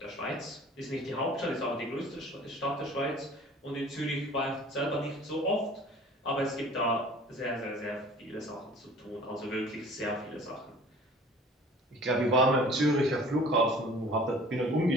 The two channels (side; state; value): both; normal; correlation 0.48